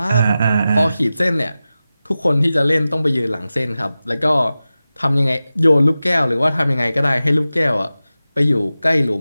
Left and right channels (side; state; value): both; inverted; correlation -0.95